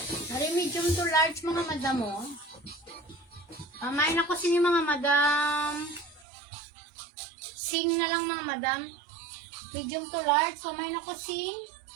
Ari medium to large mga madam mo. Pamain ako sini mga madam. Sing na lang mga madam. Medium to large. Pamain ako sing.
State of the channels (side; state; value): left; drops out; at 6.2 s